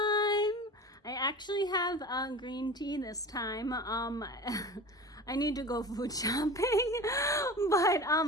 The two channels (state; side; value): normal; both; correlation 0.34